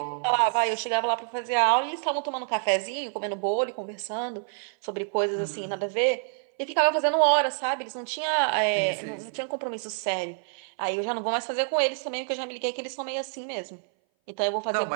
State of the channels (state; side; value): silent; left; 58 dB below the other